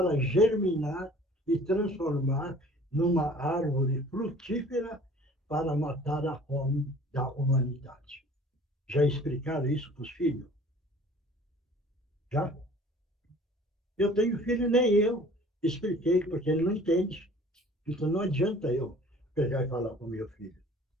germinar e transformar numa árvore frutífera para matar a fome da humanidade. Já explicaram isso para os filhos? Já? Eu tenho filho, nem eu expliquei, porque ele não entende. Então não adianta eu pegar e falar para o meu filho,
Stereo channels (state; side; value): normal; both; correlation 0.49